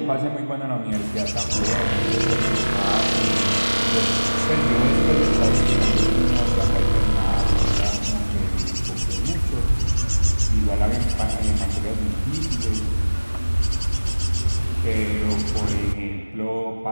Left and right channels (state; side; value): inverted; both; correlation -1.00